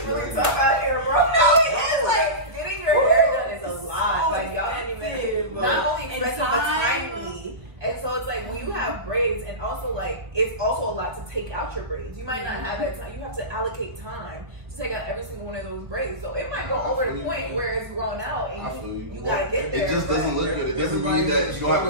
really tough out here, bro. No, it is. Like, getting your hair done is a lot. Like, y'all didn't even, not only expensive, but timely. And so it's like, when you have braids, and also like, it's also a lot to take out your braids. You might not have that time. You have to allocate time to take out every single one of those braids. So it might go over the point where it's grown out, and you gotta get there. It just doesn't look good. It doesn't mean that you don't have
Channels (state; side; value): late; left; 1.5 ms